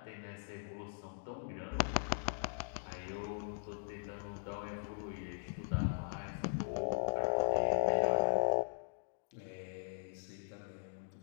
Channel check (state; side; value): silent; right; digital silence